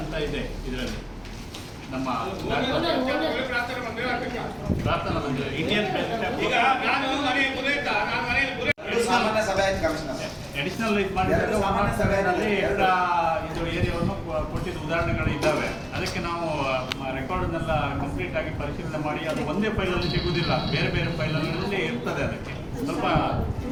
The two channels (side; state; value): both; identical; correlation 1.00